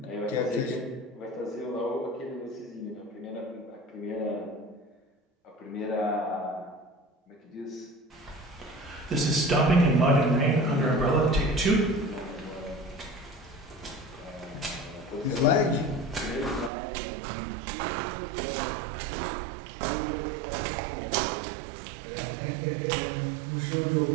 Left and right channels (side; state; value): left; drops out; at 16.7 s